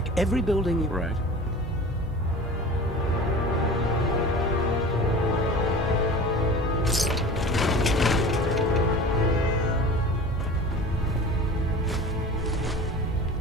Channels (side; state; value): both; normal; correlation 0.37